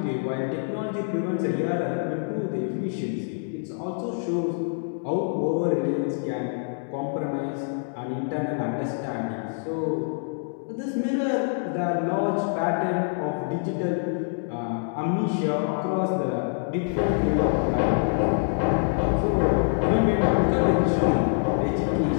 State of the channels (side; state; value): right; silent; digital silence